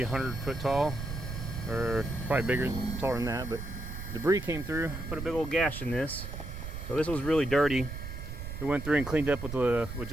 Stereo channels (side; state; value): right; noise; rumble, 7 dB below the sound